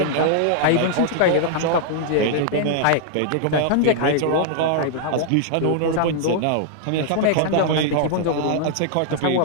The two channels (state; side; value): different; both; correlation -0.01